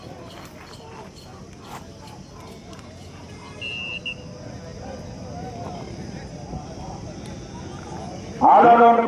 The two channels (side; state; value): both; identical; correlation 1.00